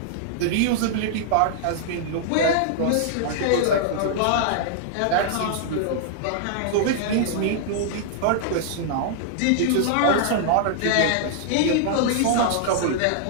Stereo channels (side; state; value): both; different; correlation -0.01